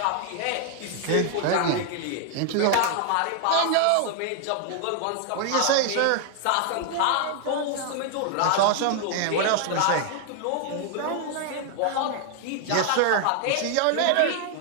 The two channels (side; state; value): both; different; correlation 0.00